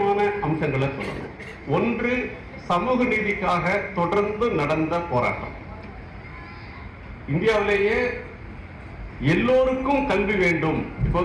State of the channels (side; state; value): both; identical; correlation 1.00